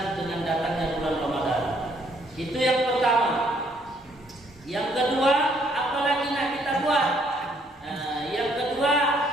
dengan datangnya bulan Ramadan. Itu yang pertama. Yang kedua, apalagi nak kita buat? Yang kedua,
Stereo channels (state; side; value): normal; both; correlation 0.67